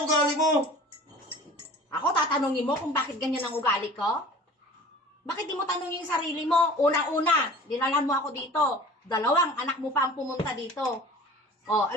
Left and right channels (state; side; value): normal; both; correlation 0.43